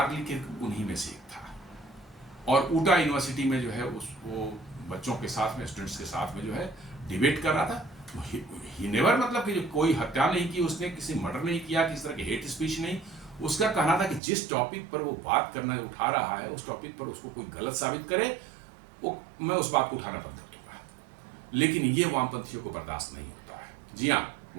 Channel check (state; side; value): drops out; left; at 14.2 s